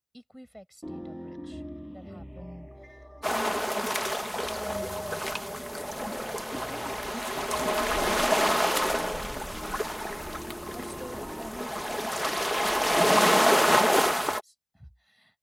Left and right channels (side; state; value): both; identical; correlation 1.00